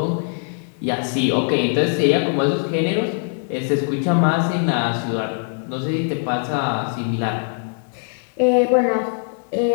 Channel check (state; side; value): silent; right; digital silence